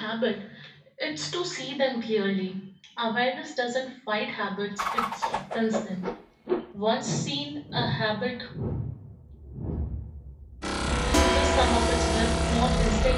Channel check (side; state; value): both; identical; correlation 1.00